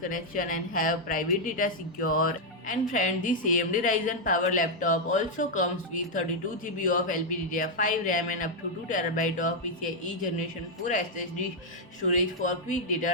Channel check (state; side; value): normal; both; correlation -0.02